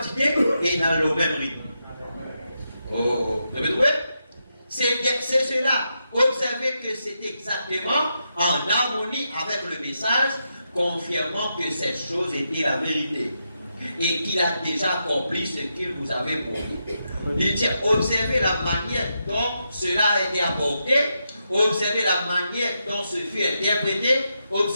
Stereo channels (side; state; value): both; inverted; correlation -0.84